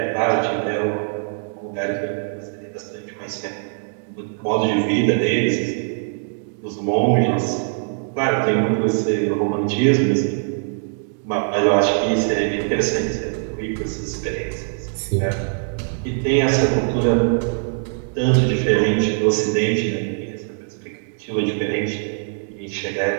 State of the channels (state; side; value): silent; left; 64 dB below the other